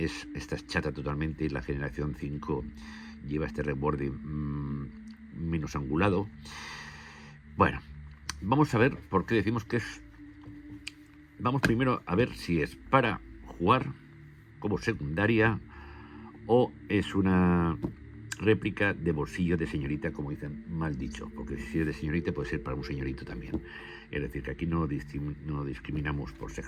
es chata totalmente, y la generación 5 lleva este reborde menos angulado. Bueno, vamos a ver por qué decimos que es. Vamos primero a ver si es para jugar como secundaria o es una réplica de bolsillo de señorita, como dicen, mal dicho, porque si es de señorita puede ser para un señorito también. Es decir, que aquí no discriminamos por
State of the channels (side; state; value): both; identical; correlation 1.00